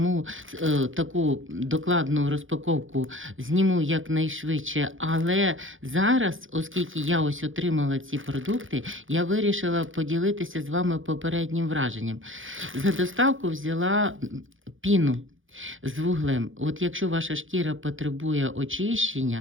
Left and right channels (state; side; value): late; left; 0.58 ms